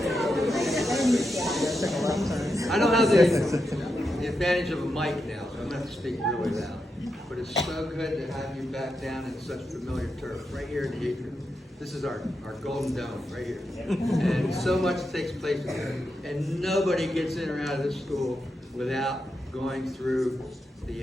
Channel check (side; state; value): both; normal; correlation 0.86